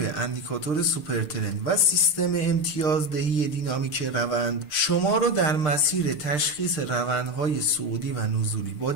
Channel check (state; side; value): late; right; 6.7 ms